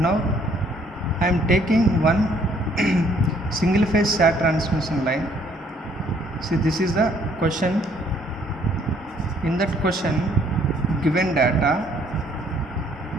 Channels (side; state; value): both; normal; correlation 0.63